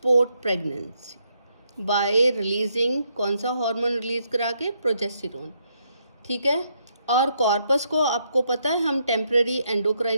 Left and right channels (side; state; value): both; inverted; correlation -0.76